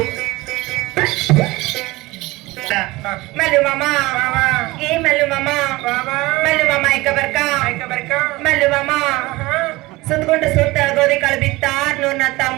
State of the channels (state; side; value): quieter; left; 20.6 dB